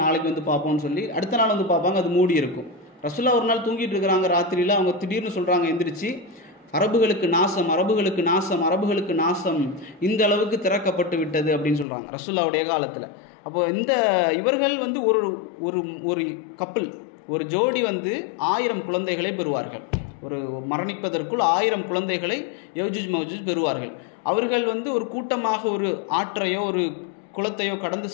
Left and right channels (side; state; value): right; drops out; at 11.9 s